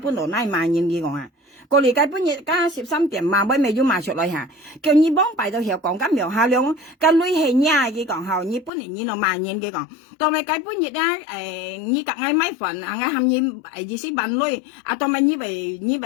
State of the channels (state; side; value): drops out; right; at 8.7 s